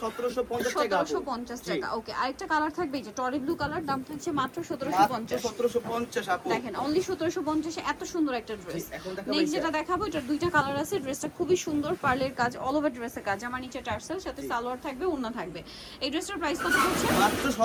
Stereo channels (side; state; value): both; identical; correlation 1.00